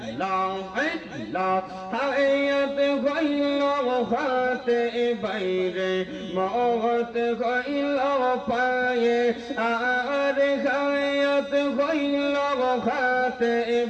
আল্লাহ। হায়াত হইল হাতে বাইরে, মওত হইল পায়ে, আর হায়াত হইল হাতে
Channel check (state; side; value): identical; both; correlation 1.00